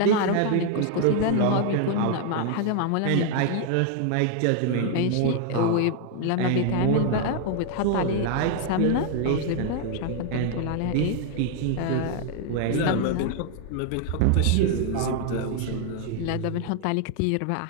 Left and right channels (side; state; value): both; different; correlation 0.00